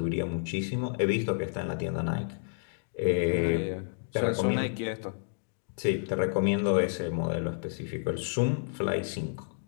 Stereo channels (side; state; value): right; silent; digital silence